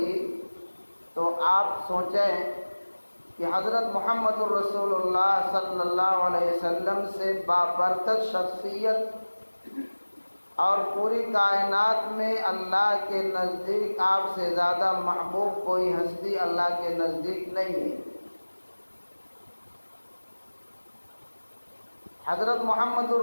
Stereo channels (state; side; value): inverted; both; correlation -1.00